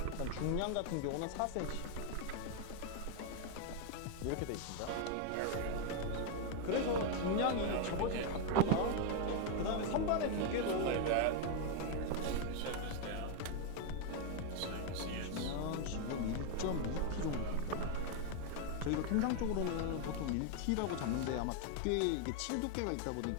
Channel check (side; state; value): both; different; correlation 0.00